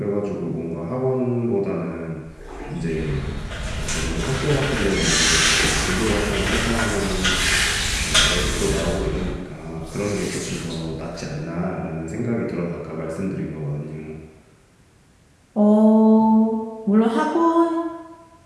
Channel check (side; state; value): both; identical; correlation 1.00